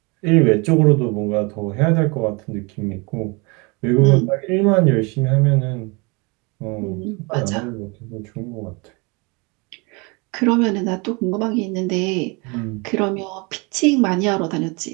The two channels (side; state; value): left; quieter; 28.5 dB